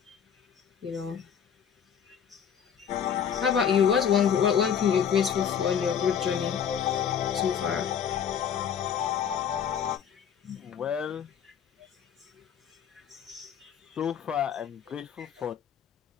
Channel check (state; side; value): quieter; right; 8.0 dB